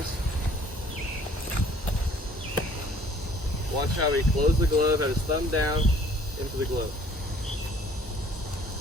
Watch how he closes the glove, have his thumb down into the glove.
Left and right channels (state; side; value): normal; both; correlation 0.56